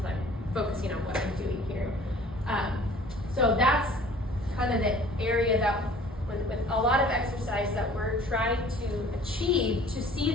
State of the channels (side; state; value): both; normal; correlation 0.49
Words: I'm focusing on what I'm doing here. So that's kind of the area that with a lot of exercise that we're trying to achieve to see